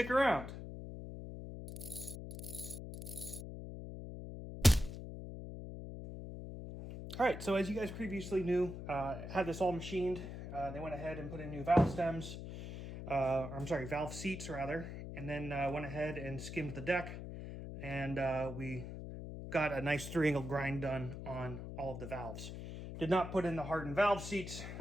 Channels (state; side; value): noise; left; hum, 8 dB below the sound